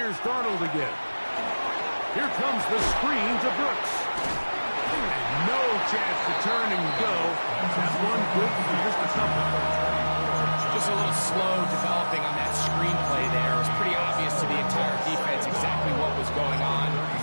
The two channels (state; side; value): inverted; both; correlation -1.00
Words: Darnold again. Here comes the screen to Brooks. And no chance to turn and go. That one good for just a couple. Just a little slow developing on that screenplay there. It was pretty obvious to the entire defense exactly what was going on.